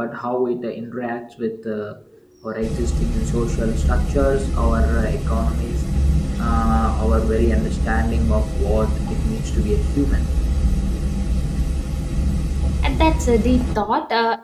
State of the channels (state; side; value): identical; both; correlation 1.00